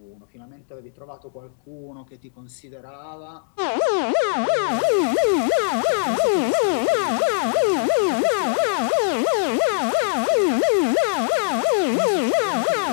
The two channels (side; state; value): right; silent; 64 dB below the other